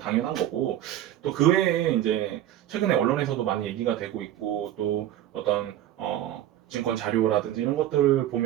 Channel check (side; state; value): left; quieter; 12.5 dB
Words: 거고, 또 그 외에 이제 최근에 언론에서도 많이 얘기가 되고 있고 또 어떤 증권 자료라든지 이런 것들